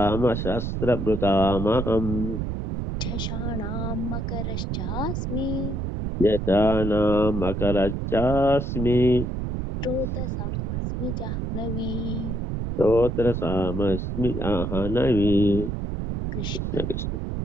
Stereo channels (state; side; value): noise; right; rumble, 3 dB below the sound